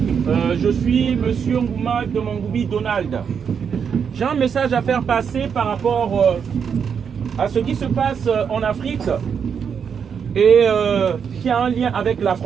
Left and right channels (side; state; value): left; quieter; 7.0 dB